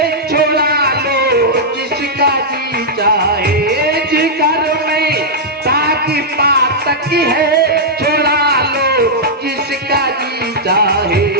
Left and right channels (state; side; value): normal; both; correlation -0.07